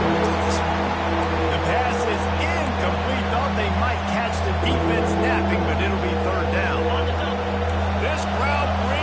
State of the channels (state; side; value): identical; both; correlation 1.00